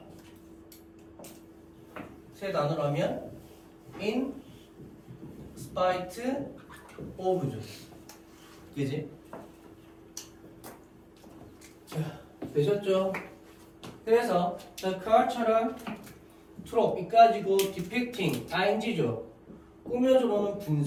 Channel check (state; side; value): identical; both; correlation 1.00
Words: 세 단어로 하면 in spite of죠. 그지? 자, 되셨죠? 그래서 the car처럼 trope 이까지고 depicting ing죠. 꾸며주로는